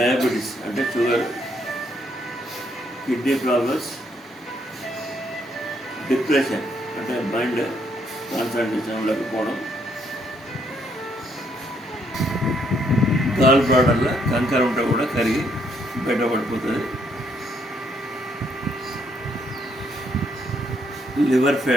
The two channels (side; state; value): both; normal; correlation 0.71